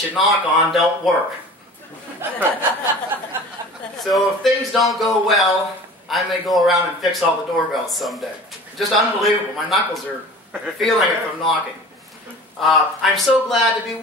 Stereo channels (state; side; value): normal; both; correlation 0.41